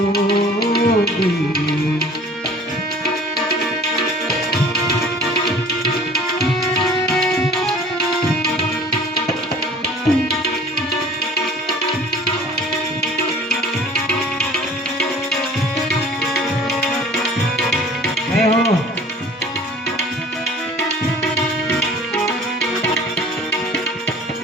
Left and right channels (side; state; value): both; normal; correlation 0.48